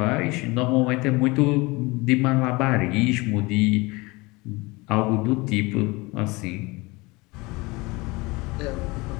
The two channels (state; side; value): quieter; right; 24.0 dB